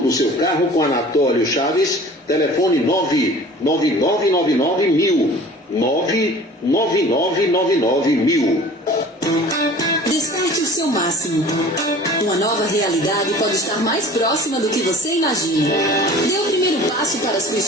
do seu carro com Anatólio Chaves. Telefone 99999 99999. Desperte o seu máximo. Uma nova realidade pode estar mais próxima do que você imagina. Dê o primeiro passo para a sua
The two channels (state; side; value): normal; both; correlation 0.45